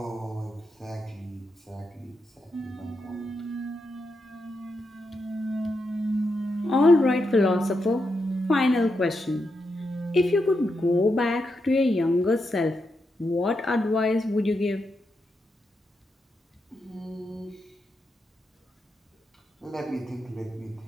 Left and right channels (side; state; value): both; normal; correlation 0.84